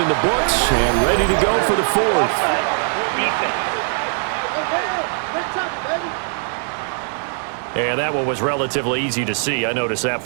the books and ready to go for the 4th. And that one was relatively easy to see. I noticed that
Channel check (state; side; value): silent; left; 55 dB below the other